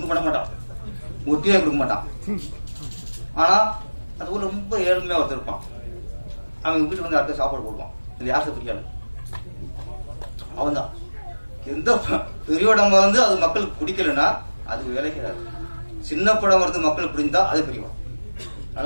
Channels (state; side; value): inverted; both; correlation -1.00